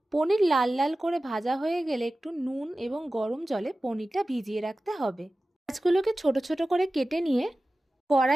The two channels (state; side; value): normal; both; correlation 0.96